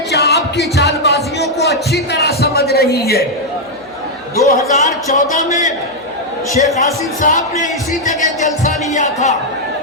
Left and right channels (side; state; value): right; noise; hum, 28 dB below the sound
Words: کی چال بازیوں کو اچھی طرح سمجھ رہی ہے۔ 2014 میں شیخ آصف صاحب نے اسی جگہ جلسہ لیا تھا،